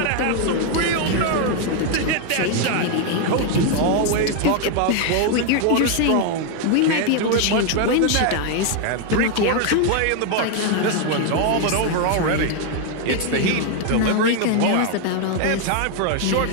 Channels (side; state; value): both; different; correlation 0.01